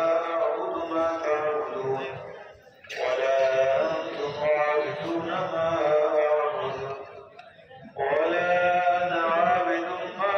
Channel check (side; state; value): both; identical; correlation 1.00